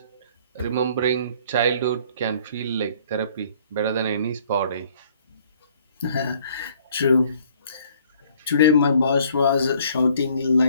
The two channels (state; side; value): inverted; both; correlation -0.59